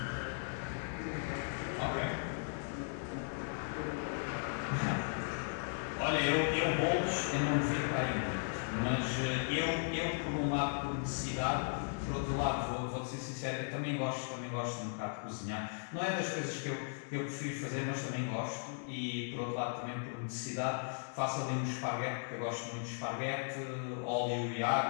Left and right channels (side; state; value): right; silent; digital silence